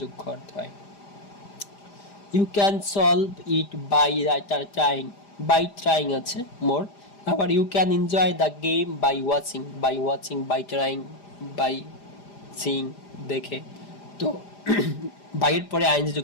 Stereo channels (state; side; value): late; right; 5.0 ms